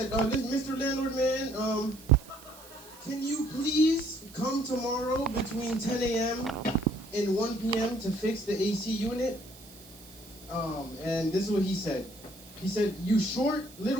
Mr. Landlord, man, can you please come tomorrow between 10 a.m. and 1 p.m. to fix the AC unit? And this is what he said. He said, you short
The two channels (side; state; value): right; noise; hiss, 20 dB below the sound